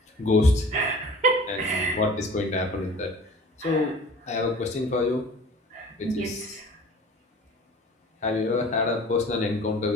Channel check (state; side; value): normal; both; correlation 0.45